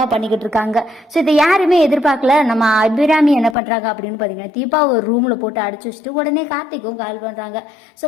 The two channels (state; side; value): drops out; right; at 3.6 s